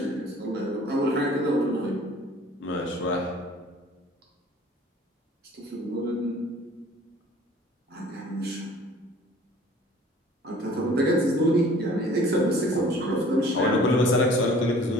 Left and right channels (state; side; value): normal; both; correlation 0.50